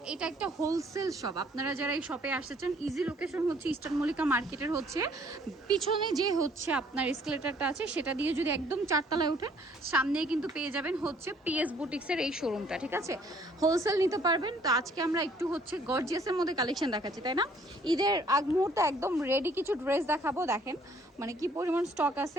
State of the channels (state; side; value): normal; both; correlation 0.61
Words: এটা একটা হোলসেল শপ। আপনারা যারা এই শপে আসতেছেন, ইজি লোকেশন হচ্ছে ইস্টার্ন মল্লিকা মার্কেটের হচ্ছে পিছনে যে হচ্ছে আপনার এসকেলেটারটা আছে, সেটা দিয়ে যদি একদম চারতলায় ওঠেন, সামনেই কিন্তু পেয়ে যাবেন হচ্ছে পিএস বুটিক্সের এই শোরুমটা। ঠিক আছে, হোলসেল নিতে পারবেন। তো আজকে আমরা একটু হচ্ছে গর্জিয়াসের মধ্যে কালেকশন দেখাচ্ছি, তাই না? ঈদের আগ মুহূর্তে একদম রেডি কিছু ড্রেস দেখাবো। দেখেন মানে কি পরিমাণ স্টক আছে